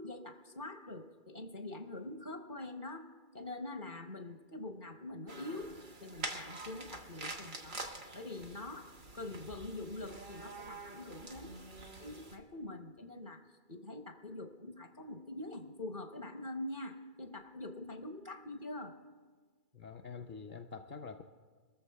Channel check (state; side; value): late; left; 2.3 ms